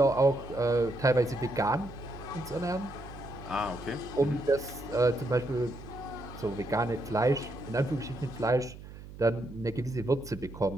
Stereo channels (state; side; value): noise; right; hum, 15 dB below the sound